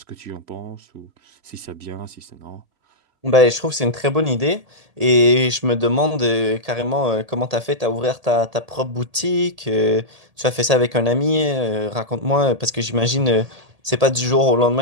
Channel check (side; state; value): left; late; 1.8 ms